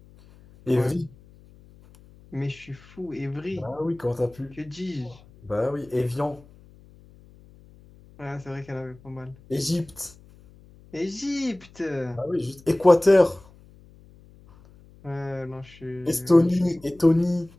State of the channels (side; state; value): left; noise; hum, 25 dB below the sound